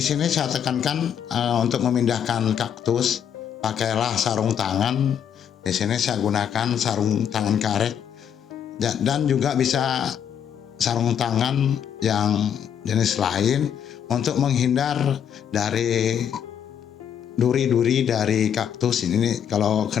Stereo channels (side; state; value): right; quieter; 8.6 dB